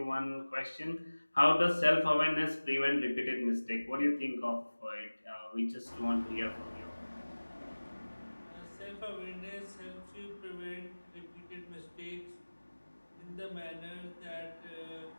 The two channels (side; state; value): both; inverted; correlation -1.00